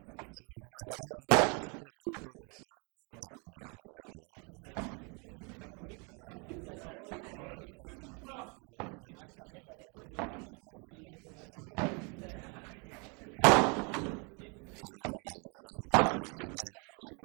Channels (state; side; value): quieter; left; 33.1 dB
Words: Siguen entrando en calor, recordamos son 3 minutos para... Está muy bien, hay que entrar en calor. Hay que entrar muy bien en calor porque acá con lo que se corre dentro de la cancha y más esta categoría que se exigen con pelotas cortas, largas, lobo pasado. Ahora ya se empiezan a sacar el uso,